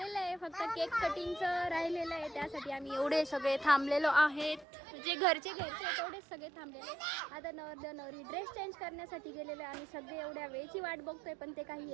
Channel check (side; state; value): left; drops out; at 4.7 s